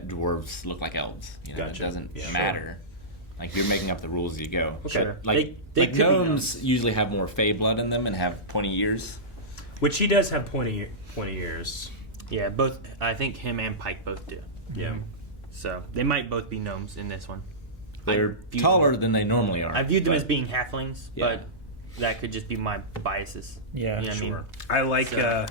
dwarves look like elves. You know, Gotcha. It doesn't Yeah. Sure. Like, you're making up the rules as you go. Okay. Sure. Like, They like could be gnomes usually have more fey blood in them and have pointy ears. Which he does have pointy ears. Yeah, both. I think him and Pike both do. Yeah. So they might both be gnomes in this one. They're taller than they normally are. I viewed them but- as being halflings, Yeah. but that could just be my biases. Yeah, You know what I mean? Sure. I like So-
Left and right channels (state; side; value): normal; both; correlation -0.16